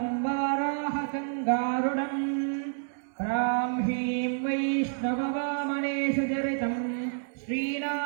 वाराहकङ्गारुणम् ब्राह्मीं वैष्णववामनेषु चरितं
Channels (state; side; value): silent; left; digital silence